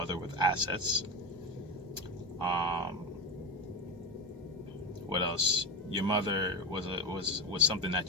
with assets. What else? Your mother was something that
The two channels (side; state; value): both; normal; correlation 0.19